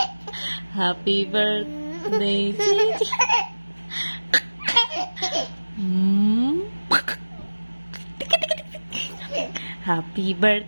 Happy birthday, Gigi. Happy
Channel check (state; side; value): inverted; both; correlation -1.00